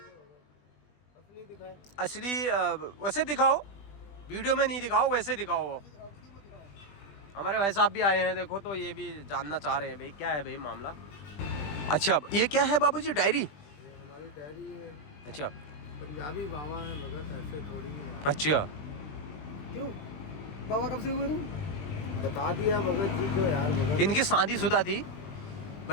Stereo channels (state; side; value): late; right; 20 ms